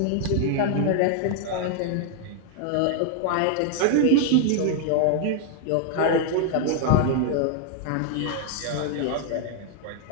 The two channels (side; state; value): both; different; correlation 0.00